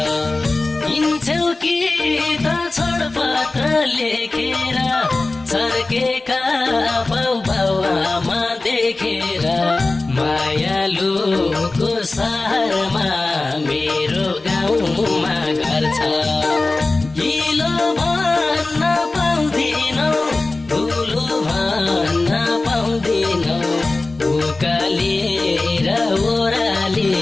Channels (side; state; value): right; quieter; 3.2 dB